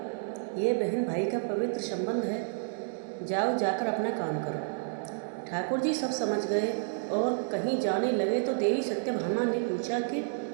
ये बहन भाई का पवित्र संबंध है। जाओ, जाकर अपना काम करो। ठाकुर जी सब समझ गए और कहीं जाने लगे तो देवी सत्यभामा ने पूछा कि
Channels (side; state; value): left; silent; digital silence